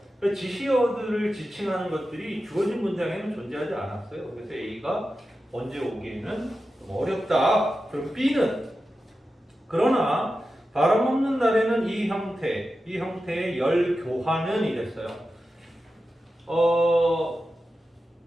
지시어들을 지칭하는 것들이 주어진 문장에는 존재하지 않았어요. 그래서 A가 언제 오기에는 좀 어렵다. 그럼 B는 그러나 바람 없는 날에는 이 형태의 열 교환은 이랬어요.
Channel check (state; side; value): normal; both; correlation 0.92